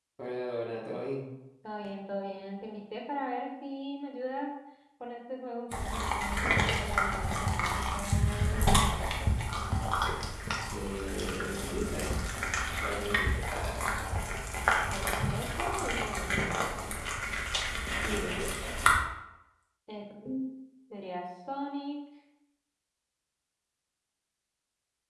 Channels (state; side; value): identical; both; correlation 1.00